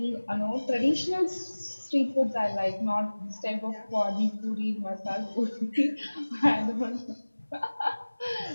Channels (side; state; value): both; inverted; correlation -1.00